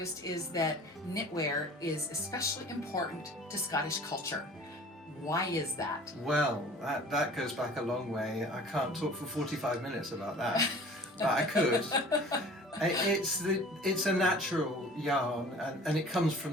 is that knitwear is especially important to Scottish culture. Why is that? Well, that goes back a long way. I can't talk for 45 minutes about that, but I could. It's a natural yarn, and it comes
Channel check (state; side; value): normal; both; correlation 0.46